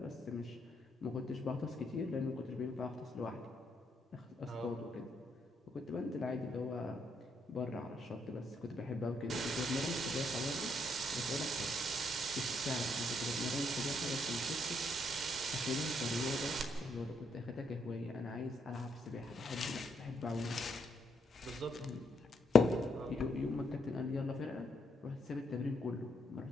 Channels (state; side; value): normal; both; correlation 0.75